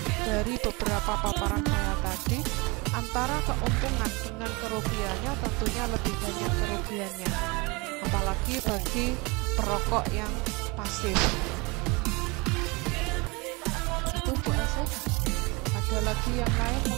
dari beberapa paparan saya tadi, antara keuntungan dengan kerugiannya tentunya lebih banyak kerugiannya, apalagi bagi perokok yang pasif. Itu Bu Asih. Ada lagi yang lain,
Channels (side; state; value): left; quieter; 26.8 dB